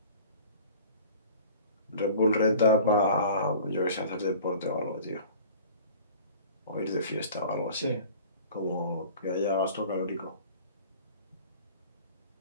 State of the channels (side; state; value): both; inverted; correlation -0.45